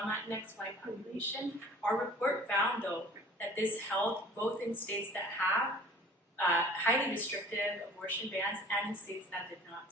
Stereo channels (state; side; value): normal; both; correlation 0.48